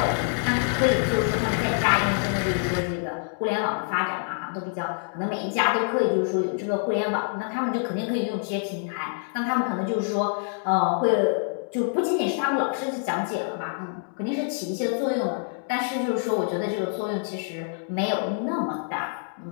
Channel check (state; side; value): silent; right; 61 dB below the other